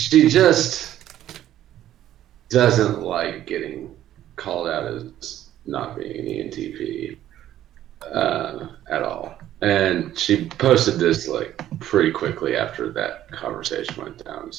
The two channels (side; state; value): left; quieter; 12.4 dB